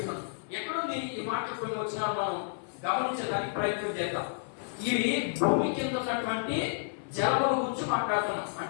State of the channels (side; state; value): right; silent; 57 dB below the other